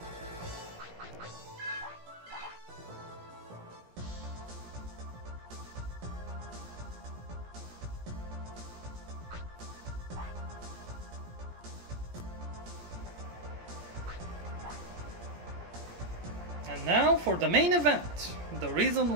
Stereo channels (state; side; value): late; left; 17 ms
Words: And now for the main event. The reason